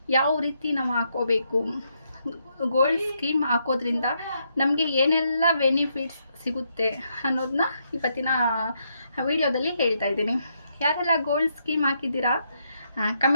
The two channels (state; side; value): inverted; both; correlation -0.78